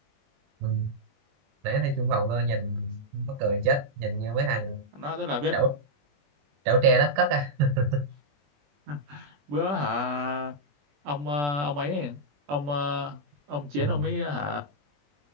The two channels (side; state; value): left; late; 21 ms